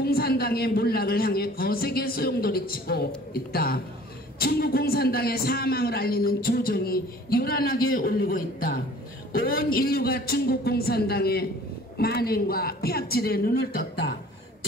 몰락을 향해 거세게 소용돌이치고 있다. 중국 공산당의 사망을 알리는 조정이 요란하게 올리고 있다. 온 인류가 중국 공산당의 만행과 폐악질에 눈을 떴다.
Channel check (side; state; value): both; normal; correlation 0.49